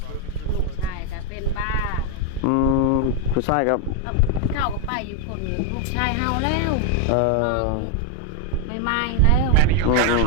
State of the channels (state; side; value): different; both; correlation 0.01